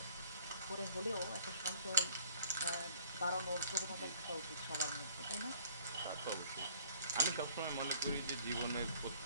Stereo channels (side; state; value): both; inverted; correlation -0.56